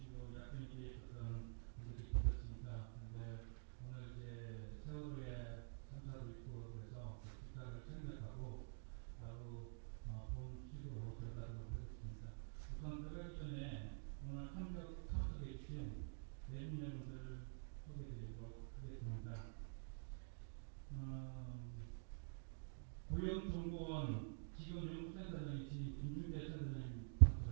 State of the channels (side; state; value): left; silent; digital silence